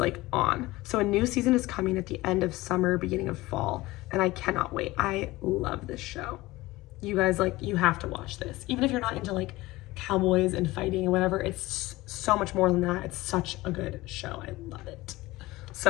on. So a new season is coming at the end of summer, beginning of fall. And I cannot wait. I love this show. You guys, like, you have to watch this. Even if you're not into like cowboys and fighting and whatever, it's so much more than that. It's such a good show. I love it.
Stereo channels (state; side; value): quieter; right; 19.4 dB